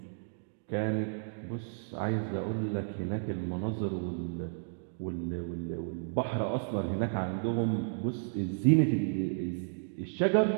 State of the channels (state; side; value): silent; left; digital silence